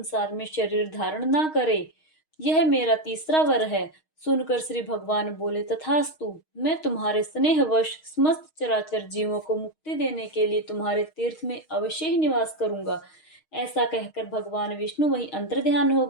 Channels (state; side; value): late; right; 6.4 ms